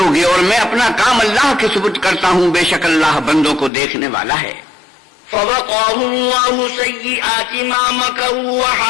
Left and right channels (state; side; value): drops out; right; at 3.7 s